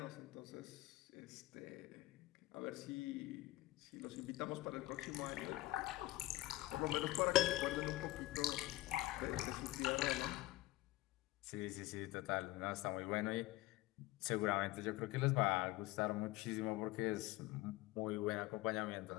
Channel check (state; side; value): quieter; right; 18.1 dB